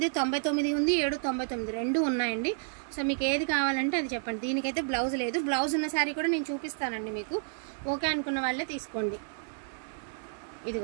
ఉంది, 799 రెండు ఉన్నాయండి. సో మీకు ఏది కావాలంటే అది చెప్పండి. దీనికైతే బ్లౌజ్ లేదు. బ్లౌజ్ ఉన్న శారీ కూడా నేను చూపిస్తానండి మీకు. ఓకే అనుకున్న వాళ్ళే తీసుకోండి.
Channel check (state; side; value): silent; left; digital silence